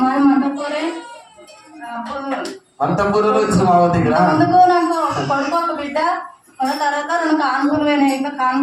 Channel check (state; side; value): identical; both; correlation 1.00